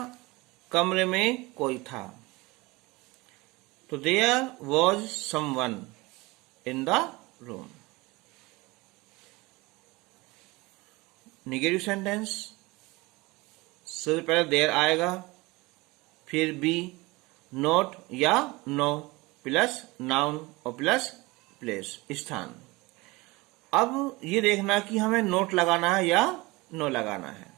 कमरे में कोई था, तो there was someone in the room. Negative sentence, सबसे पहले देयर आएगा, फिर be, not or no plus noun और प्लस प्लेस, स्थान। अब ये देखना कि हमें नोट लगाना है या नो लगाना है।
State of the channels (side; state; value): left; quieter; 22.9 dB